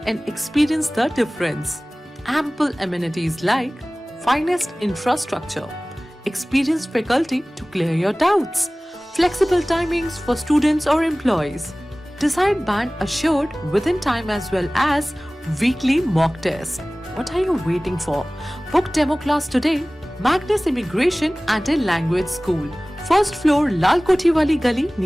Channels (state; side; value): normal; both; correlation 0.98